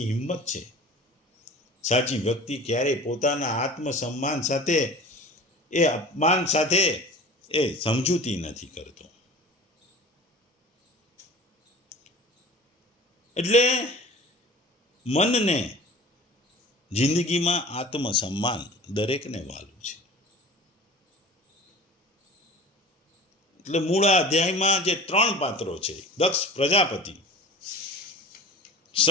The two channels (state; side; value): normal; both; correlation 0.39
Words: હિંમત છે. સાચી વ્યક્તિ ક્યારેય પોતાના આત્મસન્માન સાથે એ અપમાન સાથે એ સમજૂતી નથી કરતો. એટલે મનને જિંદગીમાં આત્મસન્માન દરેકને વાલું છે. એટલે મૂળ અધ્યાયમાં જે 3 પાત્રો છે, દક્ષ પ્રજાપતિ,